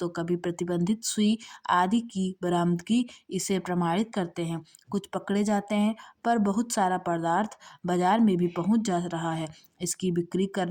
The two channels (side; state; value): both; identical; correlation 1.00